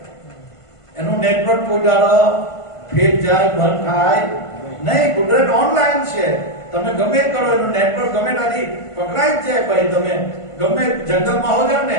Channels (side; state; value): right; late; 1.5 ms